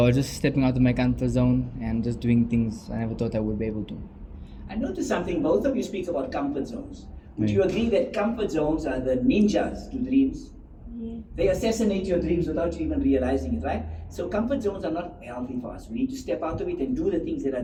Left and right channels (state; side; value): identical; both; correlation 1.00